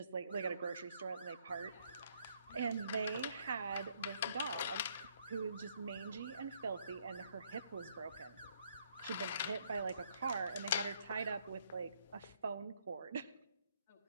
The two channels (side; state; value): both; inverted; correlation -0.68